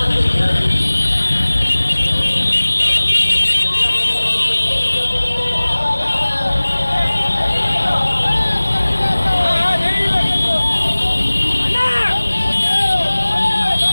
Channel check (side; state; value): both; inverted; correlation -1.00